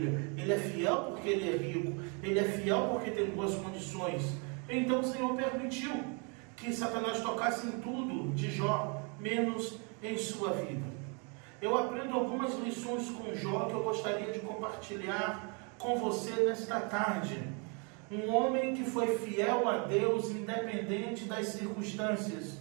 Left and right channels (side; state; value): left; quieter; 34.8 dB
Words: ele é fiel porque ele é rico, ele é fiel porque tem boas condições. Então o Senhor permitiu que Satanás tocasse em tudo de Jó, menos em sua vida. Eu aprendo algumas lições com Jó que eu gostaria de compartilhar com você nesta tarde. Um homem que foi fiel a Deus independente das circunstâncias,